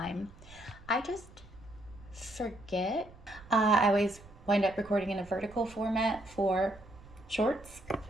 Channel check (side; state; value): right; noise; rumble, 21 dB below the sound